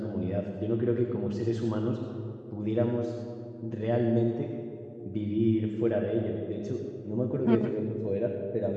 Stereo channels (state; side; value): identical; both; correlation 1.00